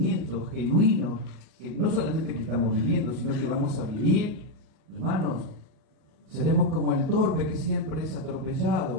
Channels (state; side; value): late; left; 38 ms